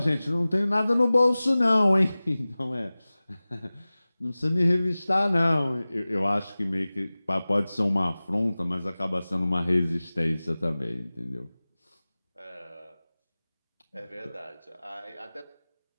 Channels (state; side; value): inverted; both; correlation -0.98